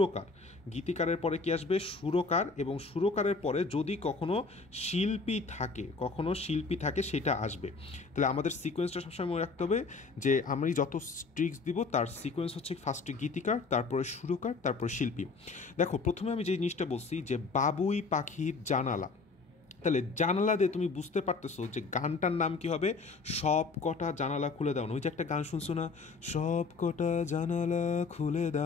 গীতিকারের পরে কি আসবে? সুরকার, এবং সুরকারের পরে যদি কখনো শিল্পী থাকে সেটা আসবে। তাহলে আমাদের সিকোয়েন্সটা সবসময় মনে রাখতে হবে যে আমি যত ট্রিক্স দিব তার সিকোয়েন্স হচ্ছে ফার্স্টে গীতিকার, তারপরে সুরকার, তারপরে শিল্পী। দেখো, প্রথমে আমি যে জিনিসটা বলছি যে বাবুই পাখির জানালা, তাহলে জানালা দিয়ে তুমি বুঝতে পারতেছো যে গানটার নাম কি হবে? সব কটা জানালা খুলে দাও না। ওই যে একটা গান শুনছো না, সব কটা জানালা খুলে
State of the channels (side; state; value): right; quieter; 4.3 dB